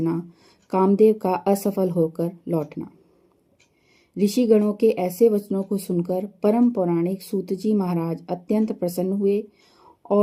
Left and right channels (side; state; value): both; identical; correlation 1.00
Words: कामदेव का असफल होकर लौटना। ऋषिगणों के ऐसे वचनों को सुनकर परम पौराणिक सूत जी महाराज अत्यंत प्रसन्न हुए